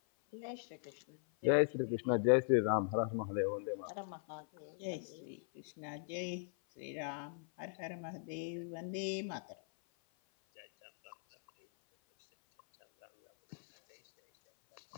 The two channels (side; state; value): right; silent; 52 dB below the other